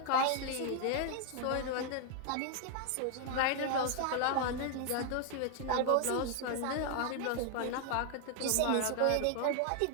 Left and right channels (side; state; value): both; different; correlation 0.00